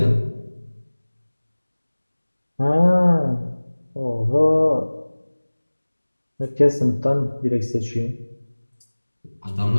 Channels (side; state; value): both; inverted; correlation -1.00